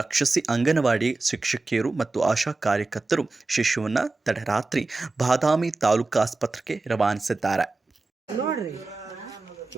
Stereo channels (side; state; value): left; quieter; 3.4 dB